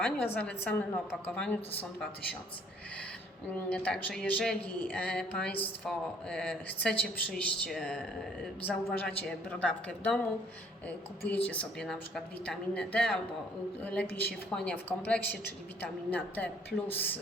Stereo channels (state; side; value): normal; both; correlation 0.61